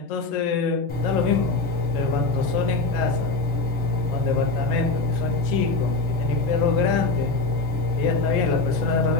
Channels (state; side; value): quieter; right; 3.5 dB